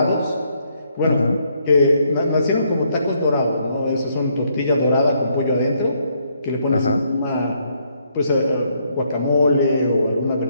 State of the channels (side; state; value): both; inverted; correlation -0.72